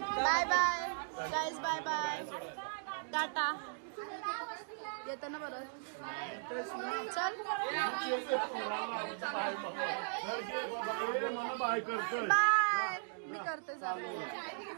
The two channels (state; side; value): silent; left; digital silence